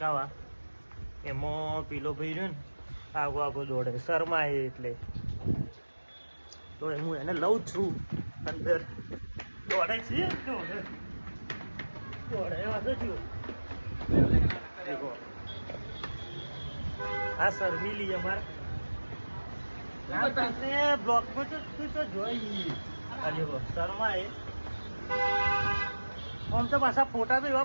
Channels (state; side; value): inverted; both; correlation -1.00